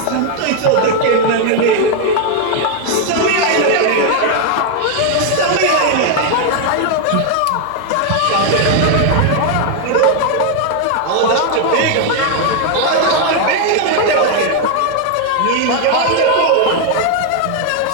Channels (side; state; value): both; different; correlation 0.00